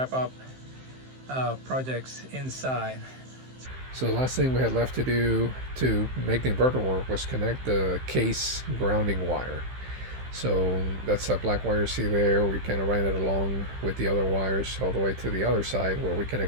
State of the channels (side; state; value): left; late; 15 ms